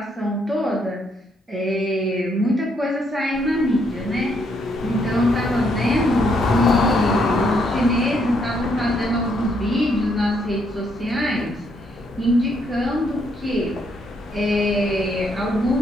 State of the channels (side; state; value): both; normal; correlation 0.73